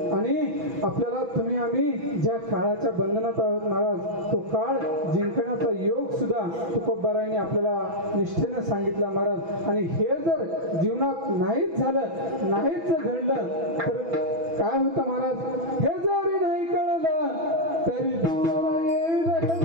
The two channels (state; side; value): late; left; 6.1 ms